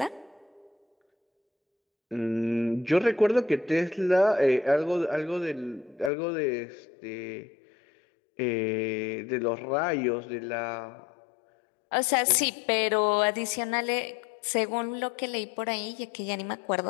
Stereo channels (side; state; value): right; drops out; at 6.1 s